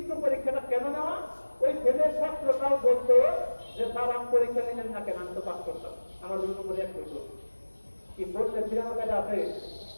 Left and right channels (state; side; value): inverted; both; correlation -1.00